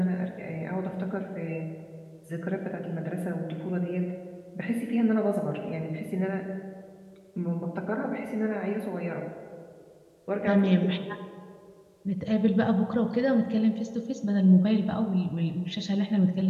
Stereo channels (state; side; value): identical; both; correlation 1.00